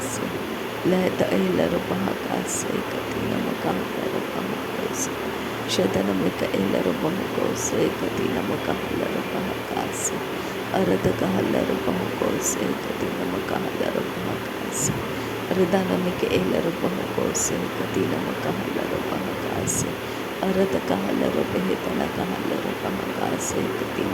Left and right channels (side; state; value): both; identical; correlation 1.00